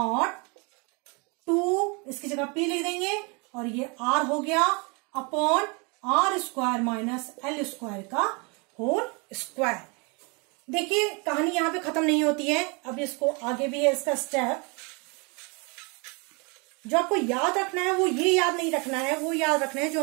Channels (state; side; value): quieter; left; 31.1 dB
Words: 2 इसकी जगह P लिख देंगे, और ये R हो गया upon r square minus l square का होल स्क्वायर। देखिए कहानी यहां पे खत्म नहीं होती है, अब इसको आगे भी है इसका स्टेप। जो आपको याद रखना है वो ये याद नहीं रखना है, वो याद रखना है